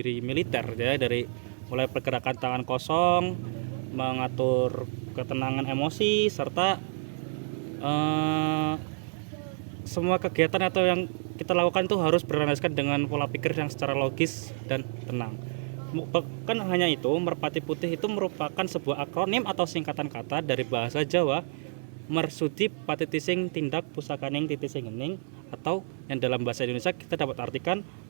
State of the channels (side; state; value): left; silent; 59 dB below the other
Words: militer ya, dari mulai pergerakan tangan kosong, mengatur ketenangan emosi, serta semua kegiatan atau yang kita lakukan itu harus berlandaskan dengan pola pikir yang secara logis dan tenang. Bukan hanya itu, Merpati Putih itu merupakan sebuah akronim atau singkatan kata dari bahasa Jawa, Mersudi Patitising Tindak Pusakaning Titising Ening, atau yang dalam bahasa Indonesia kita dapat artikan